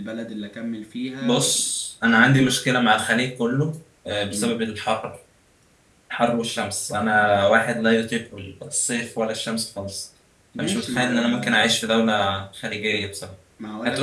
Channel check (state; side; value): identical; both; correlation 1.00